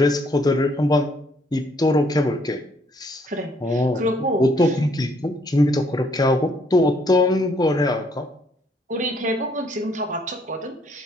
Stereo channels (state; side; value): normal; both; correlation 0.67